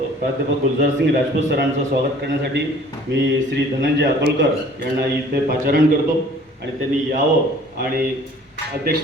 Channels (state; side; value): normal; both; correlation 0.52